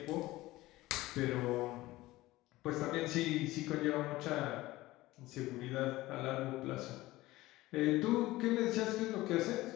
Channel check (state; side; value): quieter; right; 18.1 dB